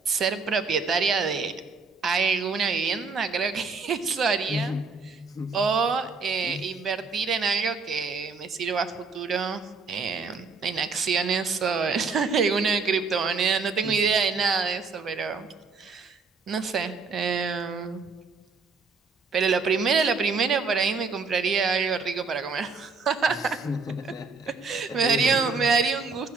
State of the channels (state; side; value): quieter; left; 4.6 dB